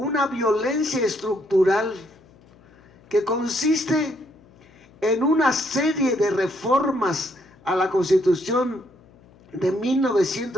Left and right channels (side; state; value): left; noise; hum, 28 dB below the sound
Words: violencia estructural que consiste en una serie de reformas a la Constitución de